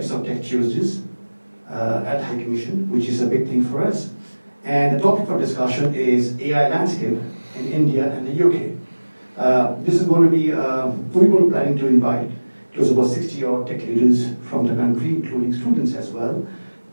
of Tech Tuesdays at High Commission, which is a big thing for us. And the topic for discussion is AI landscape in India and the UK. This is going to be, we're planning to invite close about 60 odd tech leaders from the country, including students as well,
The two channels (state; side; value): inverted; both; correlation -1.00